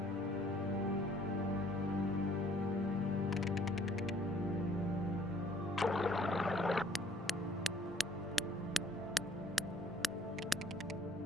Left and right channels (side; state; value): both; normal; correlation 0.60